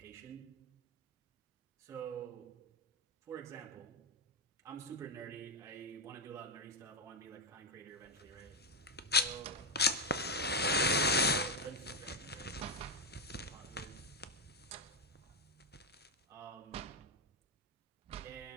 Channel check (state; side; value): normal; both; correlation 0.05